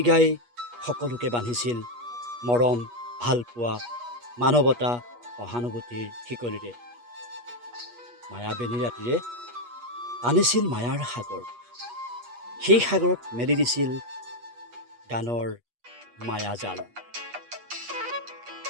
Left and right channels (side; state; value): left; late; 8.3 ms